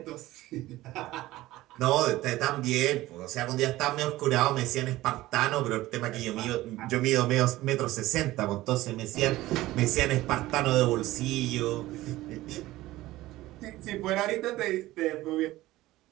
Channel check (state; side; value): quieter; left; 17.1 dB